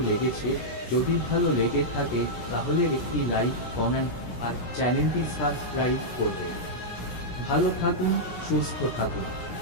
যদি ভালো লেগে থাকে তাহলে একটি লাইক, কমেন্ট আর চ্যানেলটি সাবস্ক্রাইব করবেন। ভালো থাকুন, সুস্থ থাকুন।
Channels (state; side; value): late; right; 17 ms